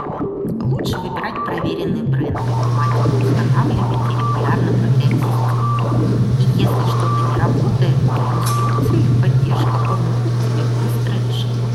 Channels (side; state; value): both; identical; correlation 1.00